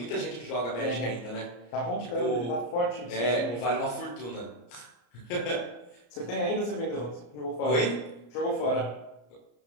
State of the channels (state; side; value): late; right; 34 ms